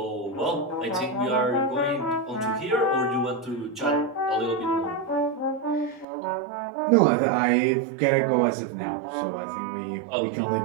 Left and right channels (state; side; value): drops out; left; at 6.1 s